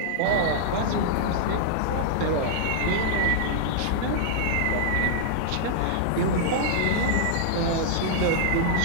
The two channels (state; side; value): different; both; correlation -0.01